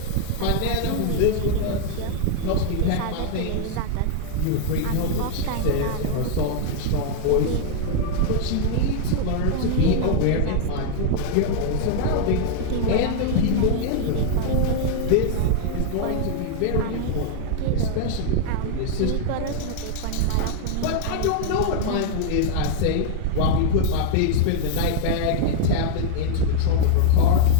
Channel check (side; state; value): both; different; correlation -0.01